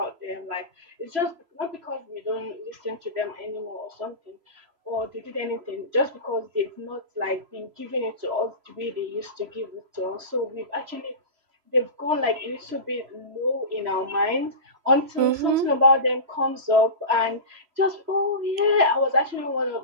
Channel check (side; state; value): left; late; 3.0 ms